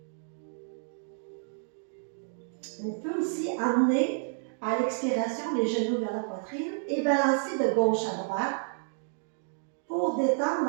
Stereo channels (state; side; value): silent; left; digital silence